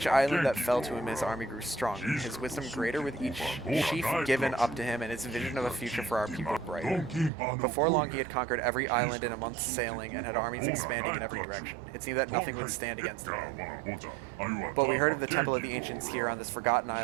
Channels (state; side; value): drops out; left; at 7.3 s